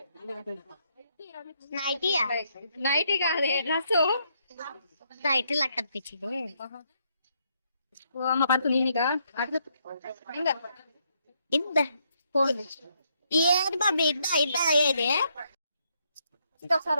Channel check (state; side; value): inverted; both; correlation -0.75